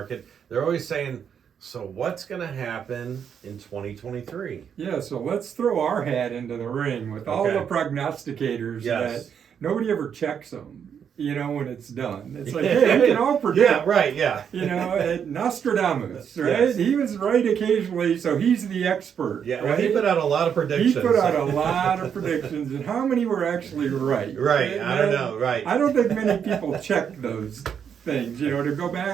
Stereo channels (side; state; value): left; quieter; 7.8 dB